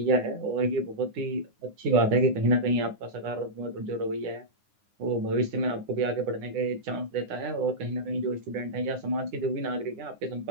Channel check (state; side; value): late; left; 9.6 ms